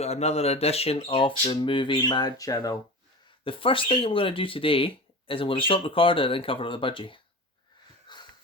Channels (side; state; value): both; normal; correlation 0.32